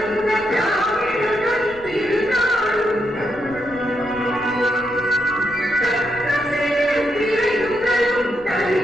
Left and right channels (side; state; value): left; noise; rumble, 22 dB below the sound